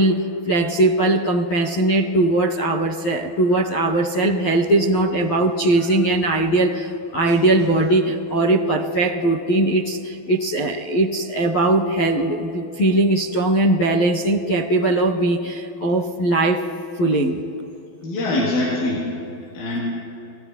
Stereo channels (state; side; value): late; right; 12 ms